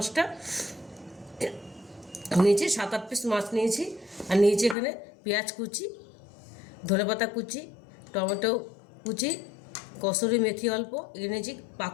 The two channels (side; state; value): right; drops out; at 4.8 s